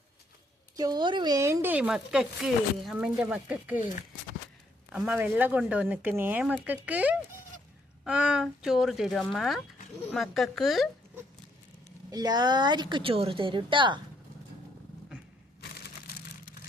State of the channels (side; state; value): both; normal; correlation 0.71